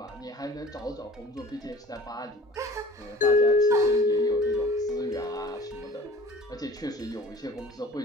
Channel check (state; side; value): normal; both; correlation 0.47